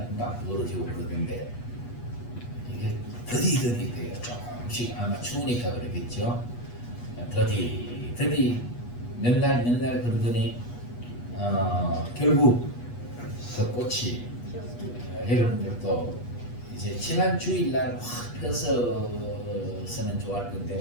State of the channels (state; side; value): late; right; 8.3 ms